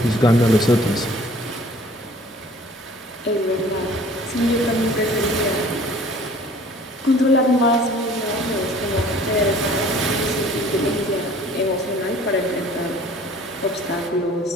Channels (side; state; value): both; normal; correlation 0.50